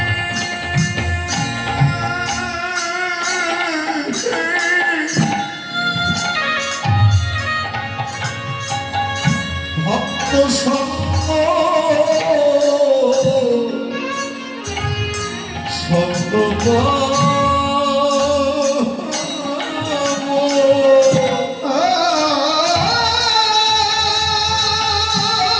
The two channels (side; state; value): both; identical; correlation 1.00